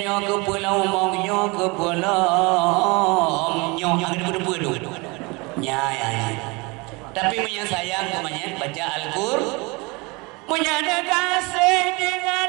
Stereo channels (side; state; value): left; quieter; 26.8 dB